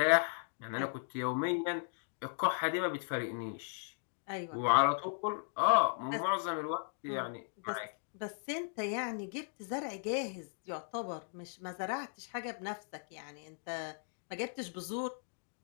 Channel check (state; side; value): silent; right; digital silence